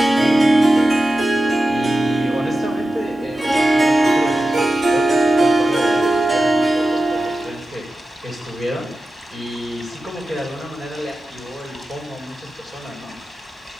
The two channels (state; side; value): normal; both; correlation 0.93